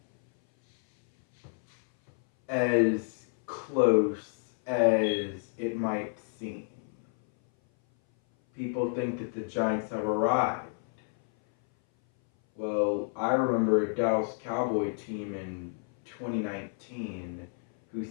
as close as it might seem. People think that the Giants have arrived. Well, I remember a Dallas Cowboy team in 2019 who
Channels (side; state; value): right; silent; 58 dB below the other